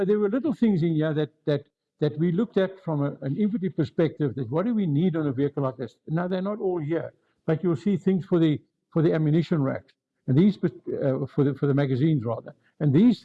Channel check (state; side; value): identical; both; correlation 1.00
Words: there were little things in here that we looked at from an infantry perspective. That what do we need on a vehicle like this? Now they're not all here, but you'll see things for the ammunition racks, and these for the magazines rather. And these